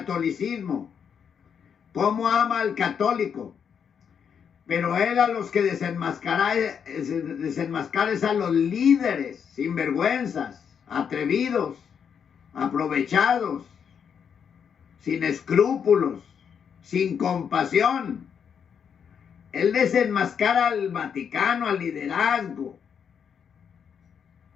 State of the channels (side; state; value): right; quieter; 7.4 dB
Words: cómo ama al católico. Pero él a los que desenmascara es a los líderes, sinvergüenzas, atrevidos, aprovechados, sin escrúpulos, sin compasión. Él desenmascara al Vaticano, al liderazgo.